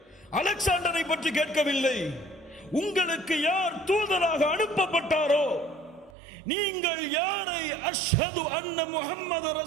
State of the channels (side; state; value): left; drops out; at 6.1 s